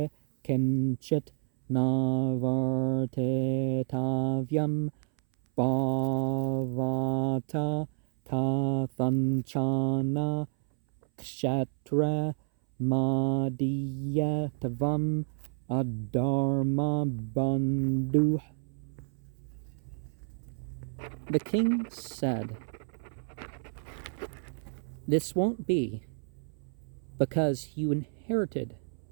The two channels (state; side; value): silent; left; 58 dB below the other